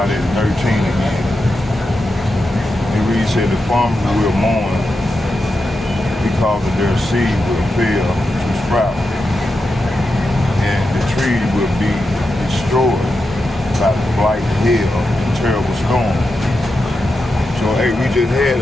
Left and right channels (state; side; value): normal; both; correlation 0.88